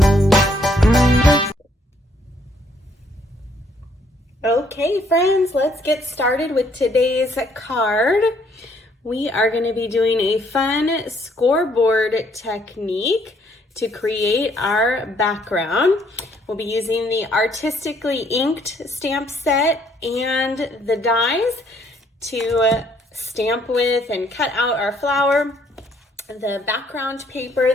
Okay friends, let's get started with today's card. We are going to be doing a fun scoreboard technique to create our background. We'll be using the artistically inked stamp set and the dies to stamp with and cut out our flower. The background paper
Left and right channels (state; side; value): normal; both; correlation 0.67